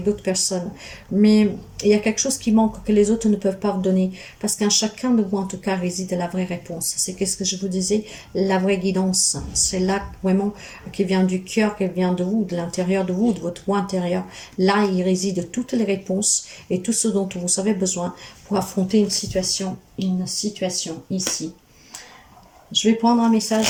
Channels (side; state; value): both; identical; correlation 1.00